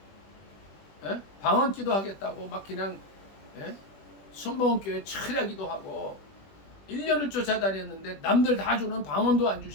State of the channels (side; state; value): right; late; 20 ms